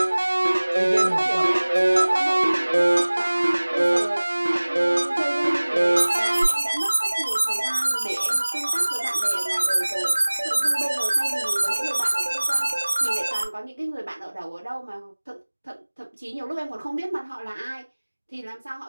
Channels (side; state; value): both; inverted; correlation -1.00